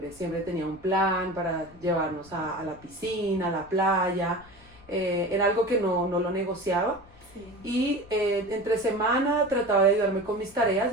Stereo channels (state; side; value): noise; left; rumble, 24 dB below the sound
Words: tenía un plan para llevarnos a la piscina, a la playa. Era algo que no lo negociaba. Y entre semana trataba de ayudarme con mis tareas